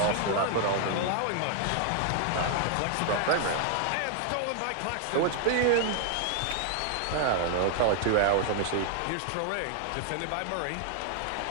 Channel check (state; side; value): different; both; correlation 0.00